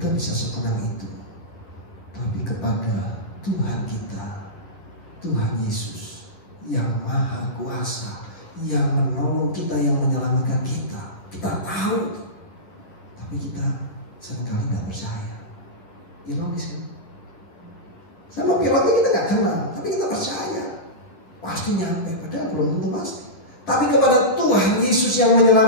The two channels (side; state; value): right; late; 10 ms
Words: bisa setenang itu, tapi kepada Tuhan kita, Tuhan Yesus yang Maha Kuasa, yang menolong kita, yang menyelamatkan kita, kita tahu, tapi kita seringkali nggak percaya. Ironis ya? Sama pilotnya kita nggak kenal, tapi kita percaya pasti nyampe, padahal belum tentu pasti. Tapi kepada Tuhan Yesus yang